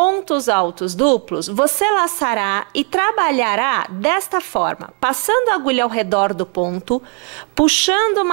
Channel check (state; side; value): quieter; left; 33.5 dB